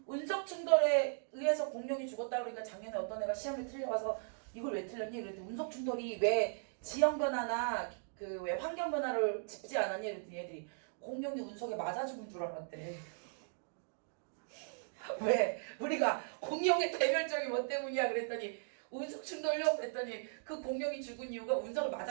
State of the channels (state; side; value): silent; left; digital silence